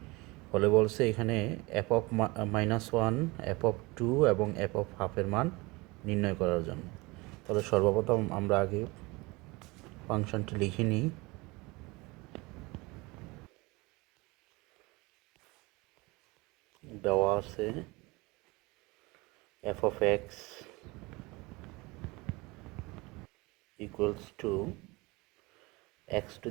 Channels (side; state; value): left; quieter; 24.1 dB